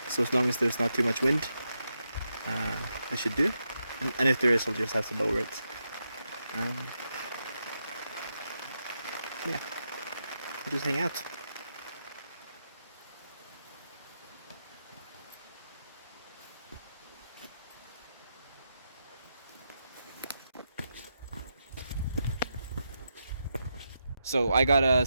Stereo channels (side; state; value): both; inverted; correlation -0.85